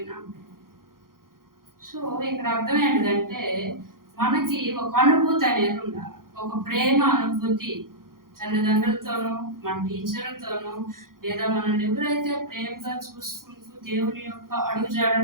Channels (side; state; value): left; late; 0.91 ms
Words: సో ఇక్కడ అర్థం ఏంటంటే, మనకి ఒక అనుభూతి అనేది ఉండాలి, ఒక ప్రేమ అనుభూతి. తల్లిదండ్రులతోనూ, మన టీచర్లతోనూ, లేదా మనల్ని ఎవరైతే ప్రేమగా చూసుకుంటూ దేవుని యొక్క